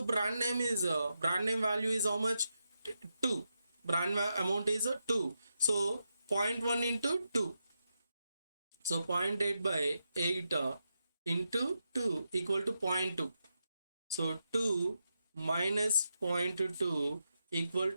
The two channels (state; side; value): inverted; both; correlation -0.86